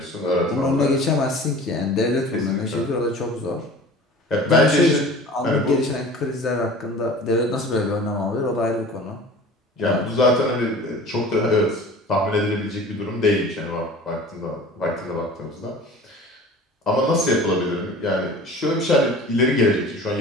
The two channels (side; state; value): both; normal; correlation 0.41